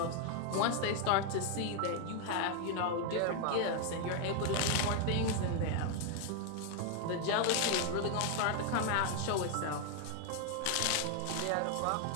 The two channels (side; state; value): both; different; correlation 0.01